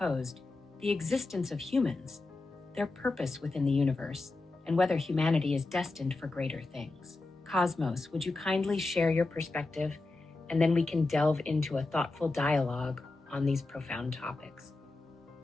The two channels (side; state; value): right; quieter; 3.3 dB